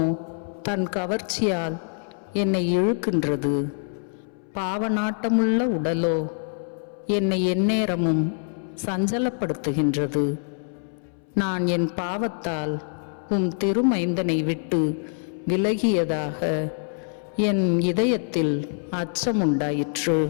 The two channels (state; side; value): silent; right; 62 dB below the other